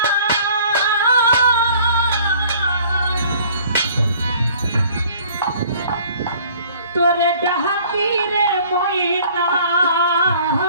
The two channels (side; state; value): both; inverted; correlation -0.53